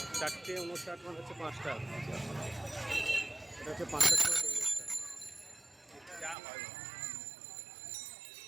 4:59 মানে হচ্ছে 5টা, এটা হচ্ছে 5টার সময়।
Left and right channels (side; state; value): left; drops out; at 6.4 s